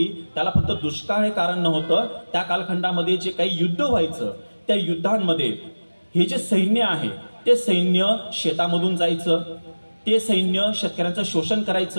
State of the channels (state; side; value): inverted; both; correlation -1.00